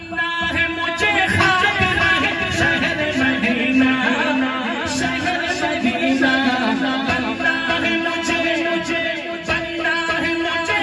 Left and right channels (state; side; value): identical; both; correlation 1.00